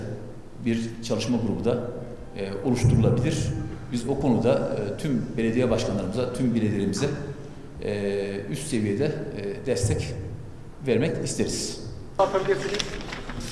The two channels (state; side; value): identical; both; correlation 1.00